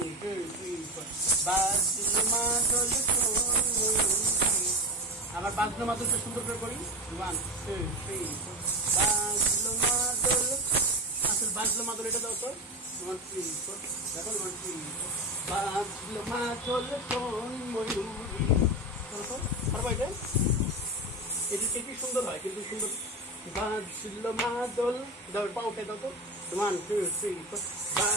2 3 4 বাজলো মাদল আবার বাজলো মাদলটা সুন্দর করে করি 1 2 3 4 বাজলো মাদল আসল বাজলো মাদল এটা দাও তো 1 3 4 দেখো 1 3 বাজলো মাদল কোন ময়ূরী করো পারবো এটা? এটি কি সুন্দর হয়, কিন্তু সুন্দর। বাজলো মাদল, দাও পা উঠে দাও তো। 1 2 3 4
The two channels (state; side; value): normal; both; correlation 0.20